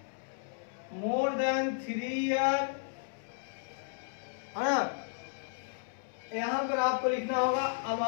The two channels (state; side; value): silent; right; 55 dB below the other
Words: मोर देन 3 ईयर, है ना। यहां पर आपको लिखना होगा